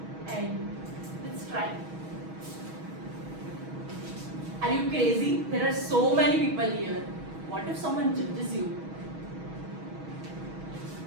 and let's try. Are you crazy? There are so many people here. What if someone judges you?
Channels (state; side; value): late; left; 6.3 ms